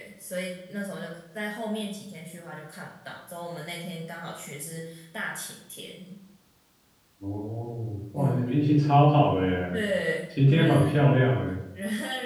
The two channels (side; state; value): both; identical; correlation 1.00